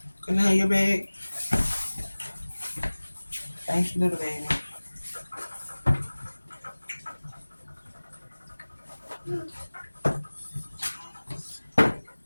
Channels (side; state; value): both; inverted; correlation -1.00